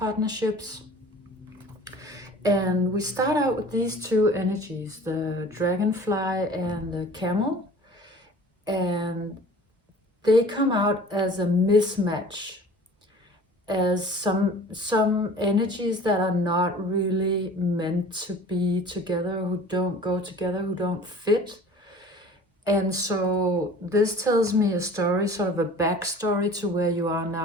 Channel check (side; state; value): both; normal; correlation 0.45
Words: And we start out with these two energies, the dragonfly and the camel. And they come out as a mismatch, as some energies that are not really meant to be together, who don't go together, who don't fit. And so this tells me a story, sort of a backstory to where you are